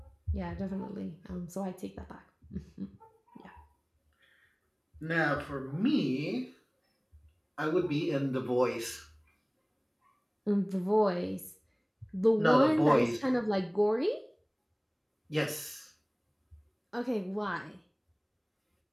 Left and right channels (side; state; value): both; identical; correlation 1.00